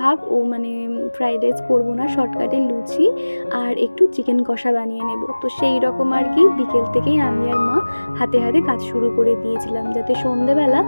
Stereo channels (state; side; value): inverted; both; correlation -1.00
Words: ও মানে ফ্রাইড রাইস করবো না, শর্টকাটে লুচি আর একটু চিকেন কষা বানিয়ে নেব। তো সেই রকম আর কি বিকেল থেকেই আমি আর মা হাতে হাতে কাজ শুরু করে দিয়েছিলাম, যাতে সন্ধেবেলা